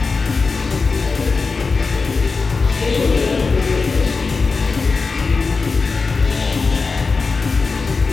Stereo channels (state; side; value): quieter; right; 4.4 dB